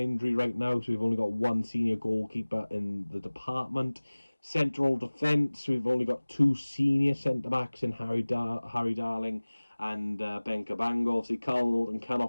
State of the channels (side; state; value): both; inverted; correlation -1.00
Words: right now, so we've only got 1 senior goalkeeper in the department. Central defence, we've only got 2 senior centre-backs in Harry Darling and Ben Cabango. Obviously, Carl Norton can